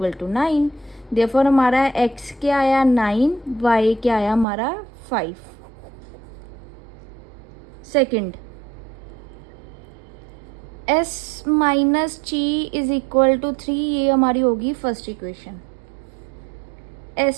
to 9। Therefore हमारा x क्या आया 9, y क्या आया हमारा 5। सेकंड, s माइनस ची इज इक्वल टू 3, ये हमारी होगी first equation.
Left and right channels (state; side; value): drops out; left; at 4.5 s